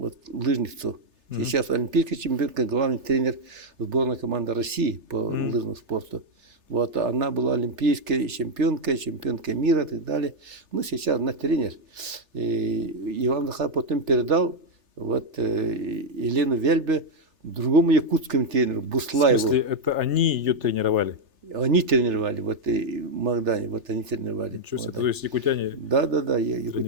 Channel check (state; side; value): late; left; 3.3 ms